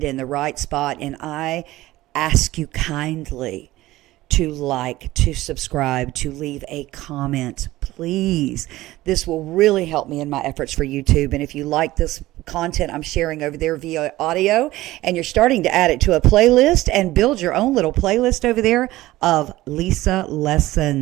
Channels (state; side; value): quieter; left; 17.1 dB